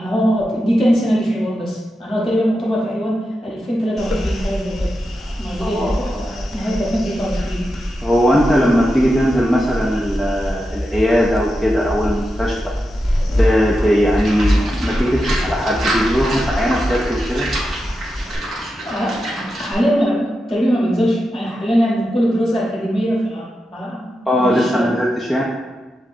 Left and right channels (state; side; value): normal; both; correlation 0.89